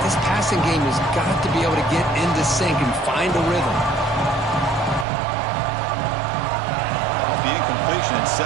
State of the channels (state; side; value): drops out; left; at 5.1 s